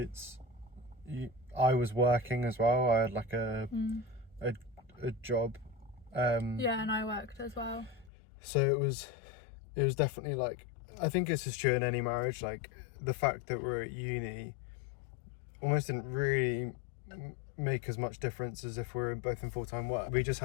I was working as well. I had like a job. Yeah, and I worked as well. So it was definitely like, I think this is true in any marriage. Like, the fact that we're at uni almost didn't really make as much difference as if we're both in full-time work. We just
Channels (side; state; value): right; drops out; at 8.1 s